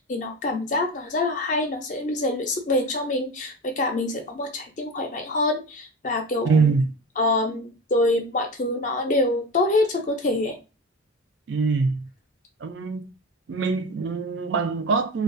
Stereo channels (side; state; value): both; normal; correlation 0.28